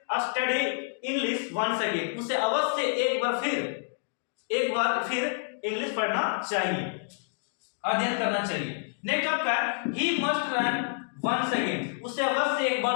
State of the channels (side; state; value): right; silent; digital silence